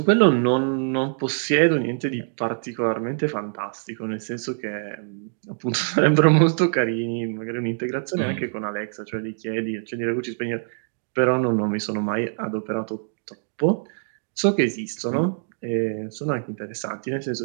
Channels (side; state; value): left; silent; digital silence